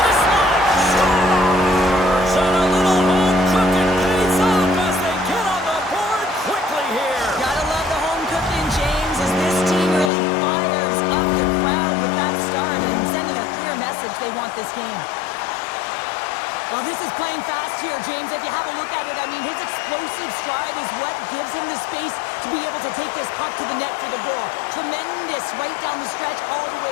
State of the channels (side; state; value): right; drops out; at 10.1 s